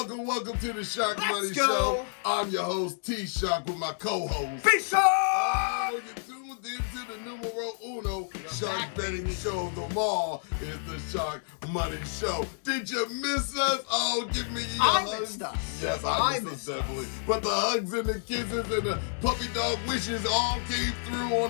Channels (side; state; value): right; silent; digital silence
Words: and welcome to the Sharkmoney go. Show. I'm your host, T-Shark, with my co-host. P-Shark! Oh, you're tuned into the numero uno shark betting show of them all. It's the Sharkmoney Show. Did you miss us? Oh, give me your hugs. Missed us. Yes, I missed us, definitely. But the hugs and the kisses and the puppy dog wishes all came through